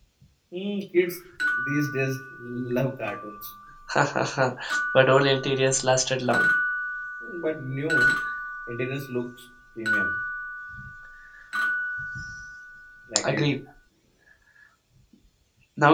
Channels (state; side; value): identical; both; correlation 1.00